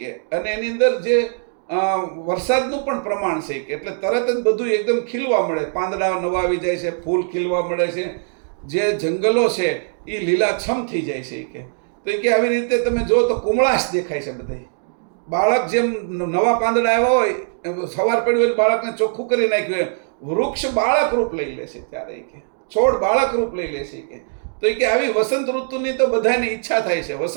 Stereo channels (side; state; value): left; silent; digital silence